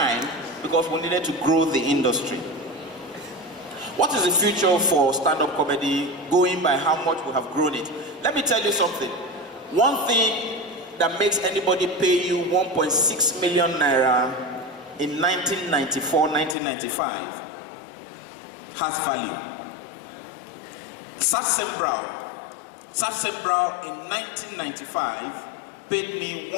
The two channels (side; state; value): right; drops out; at 16.6 s